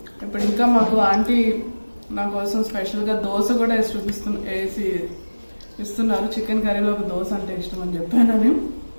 ఇప్పుడు ఇంకా మాకు ఆంటీ నా కోసం స్పెషల్గా దోశ కూడా వేసి ఇస్తున్నారు. చికెన్ కర్రీలో ఒక దోశ అంటే ఇష్టం అని చెప్పానని.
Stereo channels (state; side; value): inverted; both; correlation -1.00